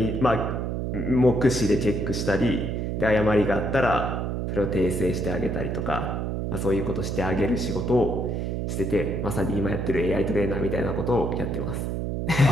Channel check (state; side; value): noise; right; hum, 2 dB below the sound